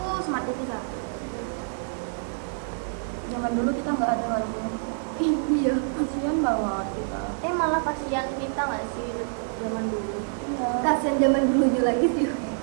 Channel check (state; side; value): silent; left; 60 dB below the other